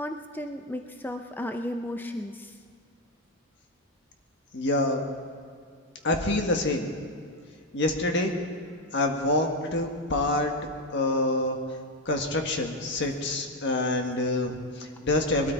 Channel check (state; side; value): normal; both; correlation 0.09